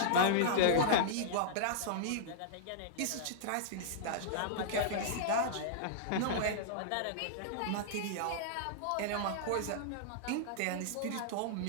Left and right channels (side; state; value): both; different; correlation -0.02